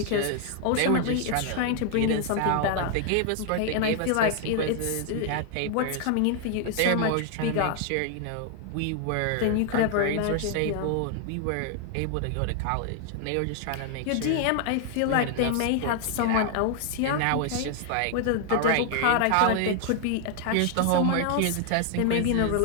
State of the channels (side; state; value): both; different; correlation 0.00